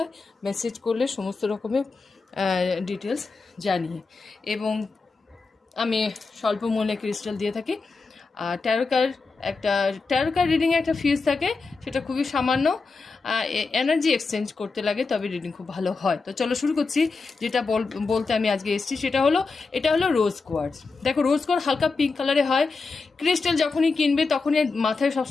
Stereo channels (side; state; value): right; quieter; 4.2 dB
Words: মেসেজ করলে সমস্ত রকমের ডিটেলস জানিয়ে, এবং আমি স্বল্প মূল্যে ক্রিস্টাল দিয়ে থাকি। আর ট্যারো কার্ড রিডিংয়ে একটা ফিজ থাকে, সেটা খুবই সামান্য। এনার্জি এক্সচেঞ্জ করতে লাগে, তবে রিডিং খুব ভালো হয়। তো চলো শুরু করছি। যেটা বলতে আমি আজকে এসেছি এটা হলো রোজ কোয়ার্টজ। দেখো, রোজ কোয়ার্টজ হালকা পিঙ্ক কালারে হয়। ক্রিস্টাল যখনই কিনবে তখনই মাথায়